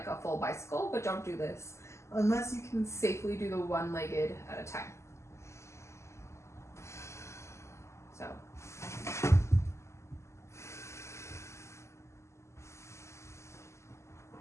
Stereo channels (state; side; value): late; right; 0.13 ms